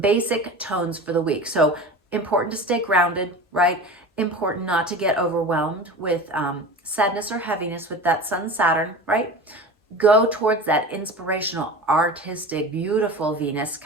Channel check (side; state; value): both; normal; correlation 0.33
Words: tones for the week. So important to stay grounded, right? Important not to get overwhelmed with sadness or heaviness with that Sun Saturn, right? Go towards that inspirational, artistic, beautiful Venus